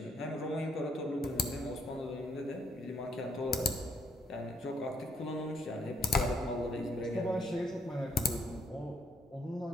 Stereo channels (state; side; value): normal; both; correlation 0.70